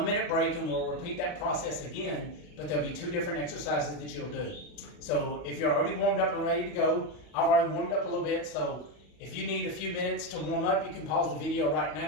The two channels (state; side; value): late; right; 40 ms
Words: break and we'll repeat that process again, but there'll be 2 different exercises that you'll do. So if you're already warmed up and ready to go, I've already warmed up a little bit, so if you need a few minutes to warm up, you can pause the video right